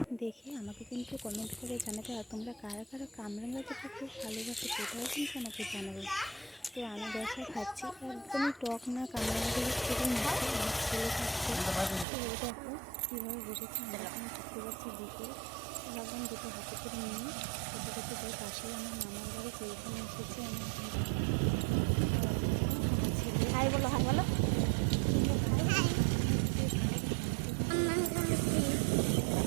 দেখে আমাকে কিন্তু কমেন্ট করে জানাবে। আর তোমরা কারা কারা কামরাঙা যেটা খুব ভালোবাসো সেটাও কিন্তু আমাকে জানাবে। তো আমি বসে খাচ্ছি, একদমই টক না, কামরাঙাগুলি খুবই মিষ্টি। আমার ছেলে খাচ্ছে। তো এই দেখো কীভাবে বসেছে, আমরা এখন ঘুরতে যাচ্ছি বিকেল। ভাবলাম দুটো হাতে করে নিয়ে খেতে খেতে যাই। পাশেই আমার মামার বাড়ি, তো এখানে এসেছি আমি এখন দেখো। আমার ছেলে হাই বলো, হাই বলো। তোমরা ভালো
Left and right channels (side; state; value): left; drops out; at 12.1 s